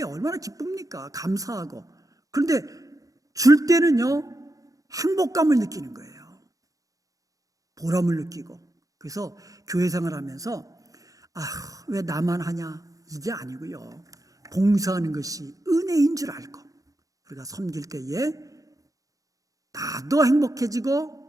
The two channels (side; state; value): left; late; 0.17 ms